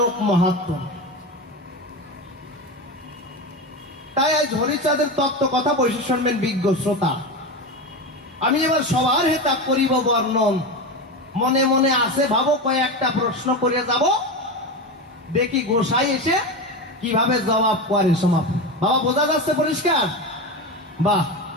মাহাত্ম। তাই আজ হরিচাঁদের তত্ত্ব কথা বসে শুনবেন বিজ্ঞ শ্রোতা। আমি এবার সবার হেতা করিব বর্ণন। মনে মনে আসে ভাবো কয়েকটা প্রশ্ন করে যাব, দেখি গোসাই এসে কিভাবে জবাব করে সমাপ্ত। বাবা বোঝা যাচ্ছে পরিষ্কার? বাহ।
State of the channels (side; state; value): both; normal; correlation 0.20